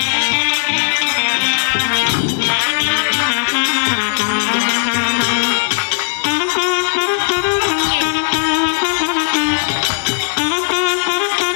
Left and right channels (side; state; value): right; silent; digital silence